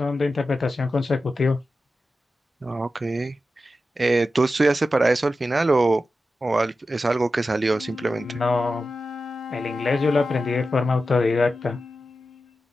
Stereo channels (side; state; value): both; normal; correlation 0.92